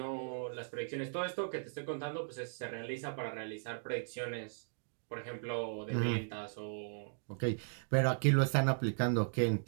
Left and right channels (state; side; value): silent; left; digital silence